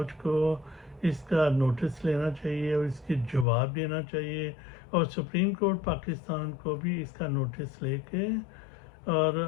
کو اس کا نوٹس لینا چاہیے اور اس کی جواب دینا چاہیے، اور سپریم کورٹ پاکستان کو بھی اس کا نوٹس لے کے اور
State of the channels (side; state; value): right; drops out; at 3.5 s